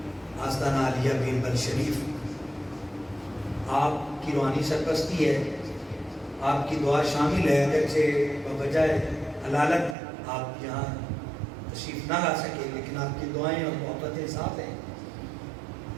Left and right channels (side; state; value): left; drops out; at 10.0 s